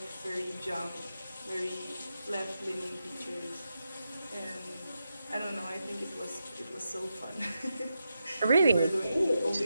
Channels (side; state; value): both; inverted; correlation -0.87